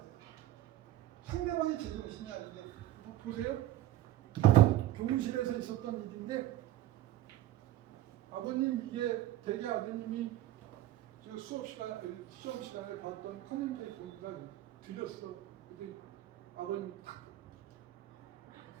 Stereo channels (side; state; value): left; quieter; 14.2 dB